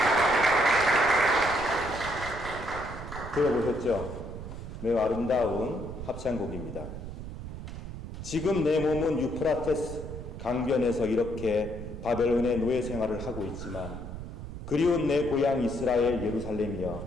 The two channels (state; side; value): noise; right; rumble, 9 dB below the sound